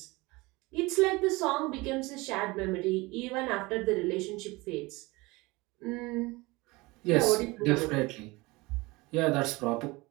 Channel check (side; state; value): left; quieter; 22.9 dB